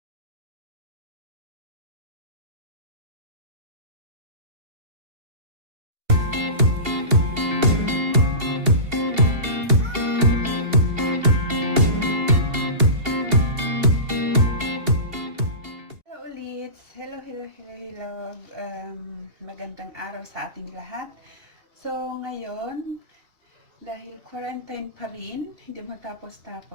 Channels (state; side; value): late; left; 2.7 ms